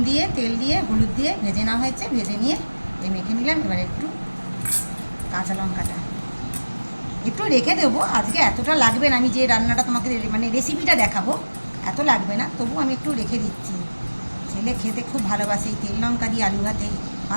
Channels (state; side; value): inverted; both; correlation -1.00